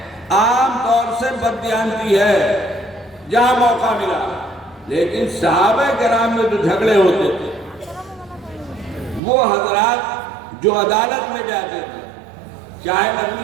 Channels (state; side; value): drops out; left; at 9.2 s